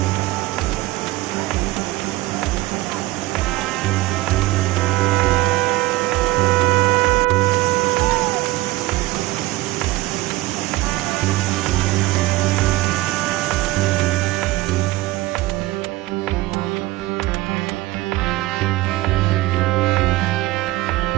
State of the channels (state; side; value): quieter; left; 18.7 dB